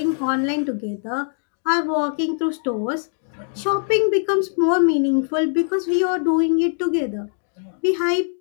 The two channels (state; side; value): silent; right; 64 dB below the other